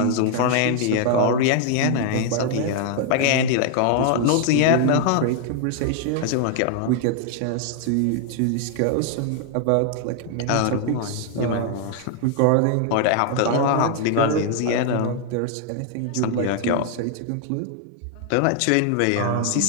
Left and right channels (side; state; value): both; different; correlation 0.00